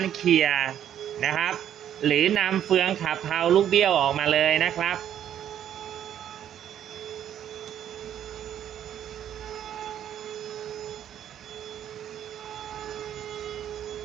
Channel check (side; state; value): left; quieter; 10.3 dB